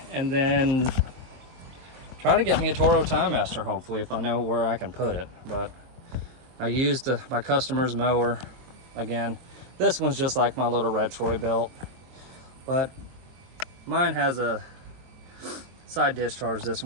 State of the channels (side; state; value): left; late; 23 ms